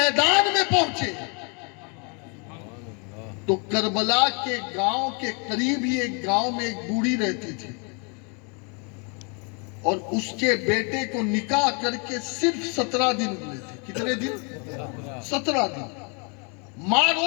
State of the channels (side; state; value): right; quieter; 35.1 dB